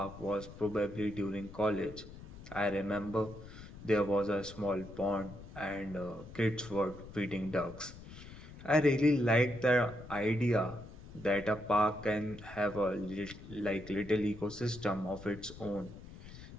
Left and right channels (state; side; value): noise; left; rumble, 15 dB below the sound